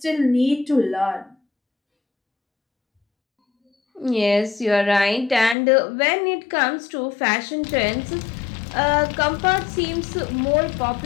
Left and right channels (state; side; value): drops out; right; at 5.6 s